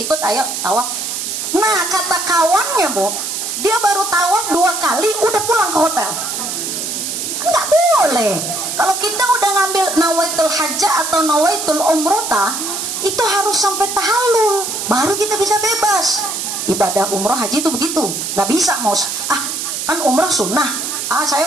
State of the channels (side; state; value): right; noise; hiss, 4 dB below the sound